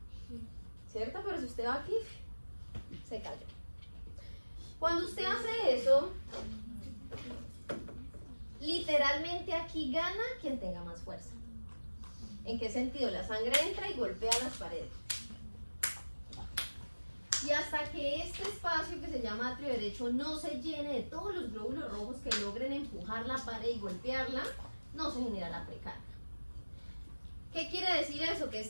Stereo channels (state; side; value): inverted; both; correlation -1.00